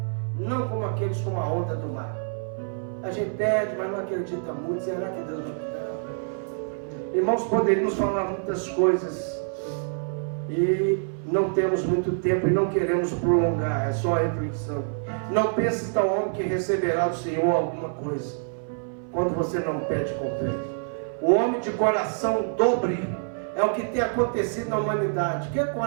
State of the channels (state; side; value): silent; left; 58 dB below the other